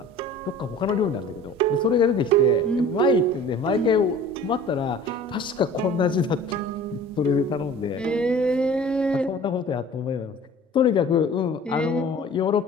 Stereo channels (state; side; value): normal; both; correlation 0.45